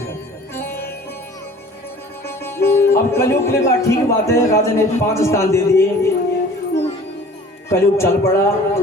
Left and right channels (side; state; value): both; normal; correlation 0.47